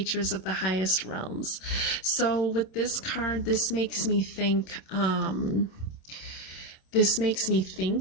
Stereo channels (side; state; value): right; late; 27 ms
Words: of the highest realms. So with this card, this makes me think